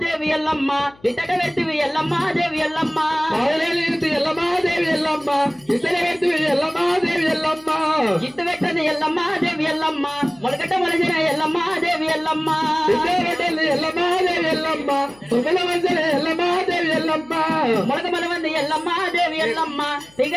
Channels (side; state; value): left; noise; hum, 28 dB below the sound